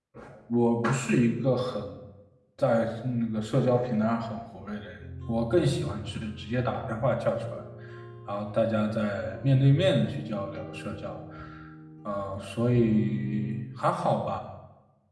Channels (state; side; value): identical; both; correlation 1.00